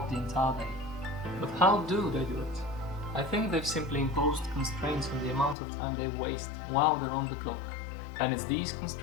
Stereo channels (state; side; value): drops out; right; at 5.6 s